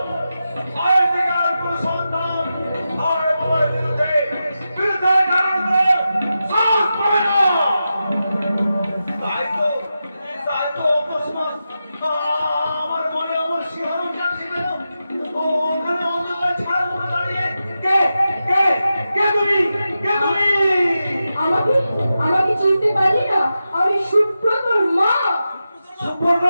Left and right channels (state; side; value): inverted; both; correlation -0.91